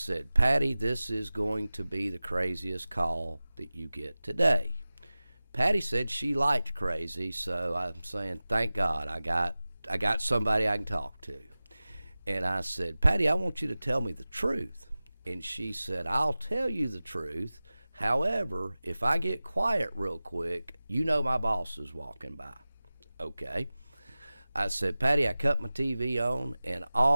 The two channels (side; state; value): both; inverted; correlation -0.97